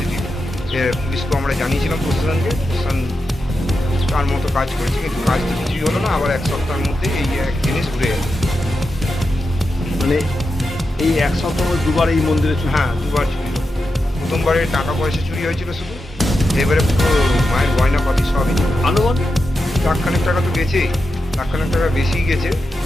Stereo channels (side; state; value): both; normal; correlation 0.89